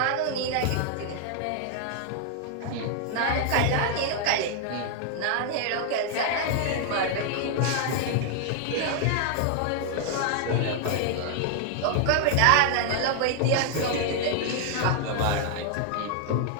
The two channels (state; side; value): different; both; correlation 0.00